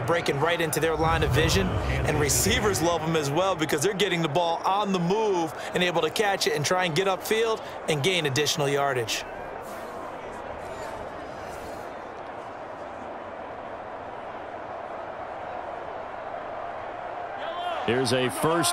breaking right into their line of vision, and receivers love them as well because they're getting the ball on the move and able to catch it and try and get upfield and gain additional yardage. Here's a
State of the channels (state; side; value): identical; both; correlation 1.00